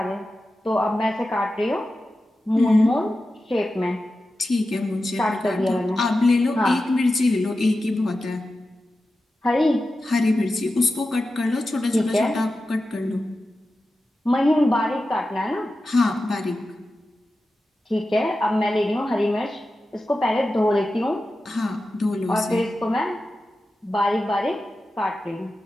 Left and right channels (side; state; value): both; normal; correlation 0.93